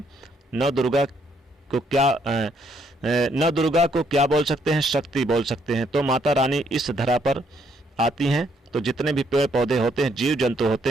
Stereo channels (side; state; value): both; normal; correlation 0.70